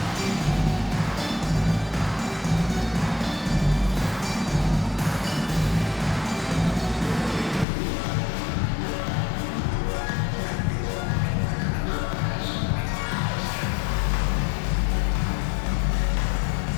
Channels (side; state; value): right; drops out; at 7.7 s